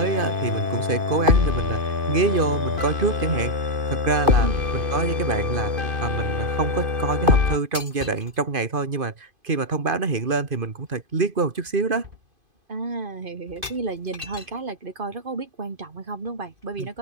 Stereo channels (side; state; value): left; late; 2.5 ms